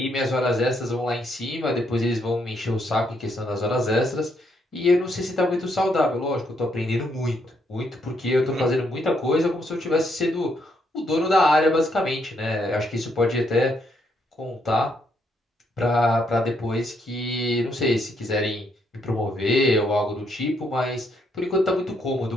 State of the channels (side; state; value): both; normal; correlation 0.74